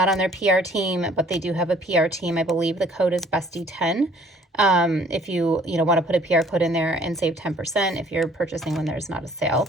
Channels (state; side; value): normal; both; correlation 0.57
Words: on their PR team, but they do have a PR team. I believe the code is Bestie10. If you want to put a PR code in there and save 10% if you're purchasing when there's not a sale.